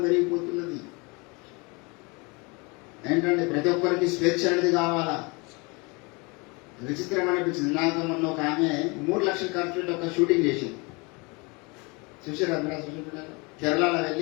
పెరిగిపోతున్నది. ఏంటంటే ప్రతి ఒక్కరికి స్వేచ్ఛ అనేది కావాలా. విచిత్రం అనిపించింది. నాకు మొన్న ఒక ఆమె 3 లక్షలు ఖర్చు పెట్టి ఒక షూటింగ్ చేసింది. చూసారా మీరు? కేరళలో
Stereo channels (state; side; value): quieter; right; 28.5 dB